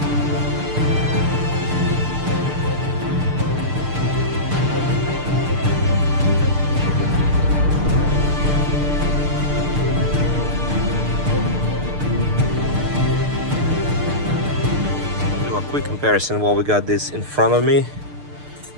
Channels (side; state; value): left; late; 6.7 ms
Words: Quick comparison while we got this in front of me.